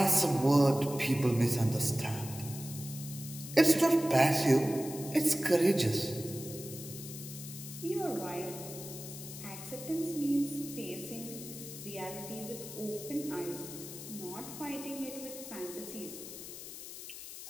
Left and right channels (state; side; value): noise; left; hiss, 11 dB below the sound